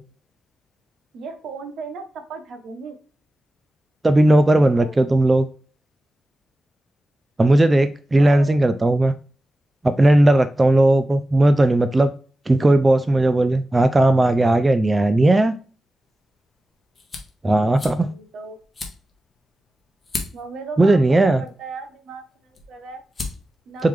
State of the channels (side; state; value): both; normal; correlation 0.95